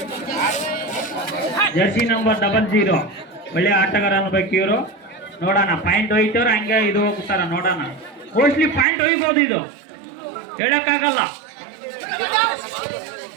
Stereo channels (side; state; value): left; drops out; at 8.8 s